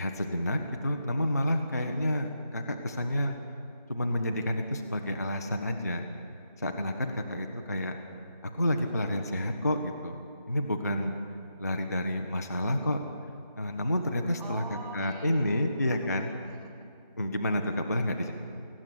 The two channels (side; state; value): both; inverted; correlation -0.82